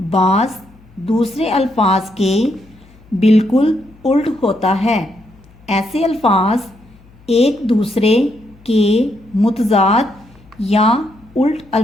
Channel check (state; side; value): noise; left; hum, 26 dB below the sound